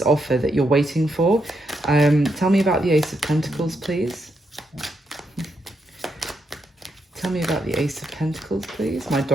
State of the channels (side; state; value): both; normal; correlation 0.80